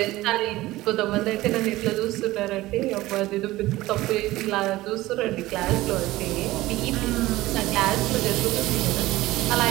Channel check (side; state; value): left; quieter; 17.7 dB